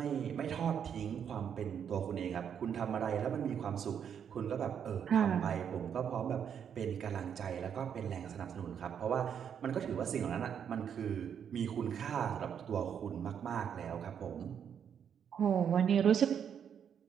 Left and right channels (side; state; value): left; quieter; 8.1 dB